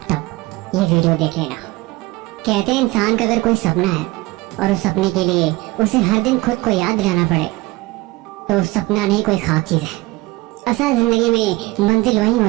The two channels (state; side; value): quieter; left; 20.7 dB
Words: तब ये वीडियो देख लेना। कहते हैं इंसान का अगर कोई सपना है और उस सपने के लिए उसे हर दिन खुद को याद दिलाना पड़े तो सपना नहीं कोई ख्वाब चीज है। असल जिंदगी में मंजिल वही